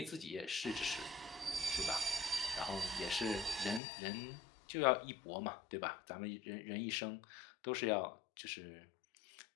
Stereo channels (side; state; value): right; drops out; at 3.8 s